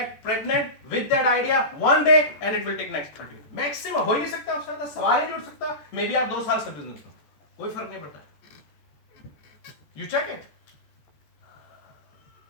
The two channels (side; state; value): right; late; 14 ms